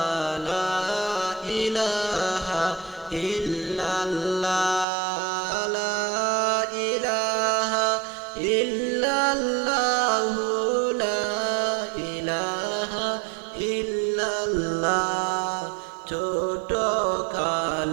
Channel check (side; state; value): left; drops out; at 4.9 s